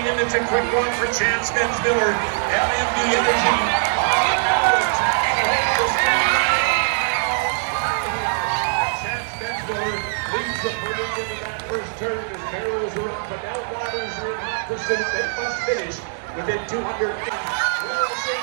and it's a quick one for Chance Miller. LMB Energy. Leads the further into that first turn as barrels are up, but now waters are in hot pursuit. They must finish within 200 feet. Wilson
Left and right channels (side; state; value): left; silent; digital silence